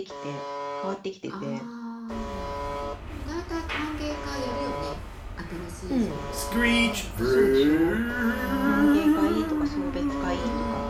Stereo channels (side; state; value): both; identical; correlation 1.00